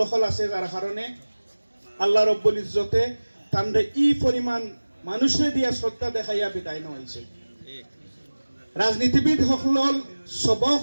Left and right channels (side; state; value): both; inverted; correlation -1.00